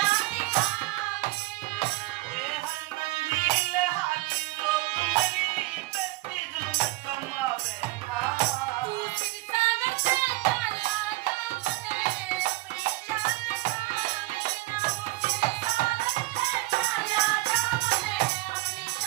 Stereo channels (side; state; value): left; quieter; 21.2 dB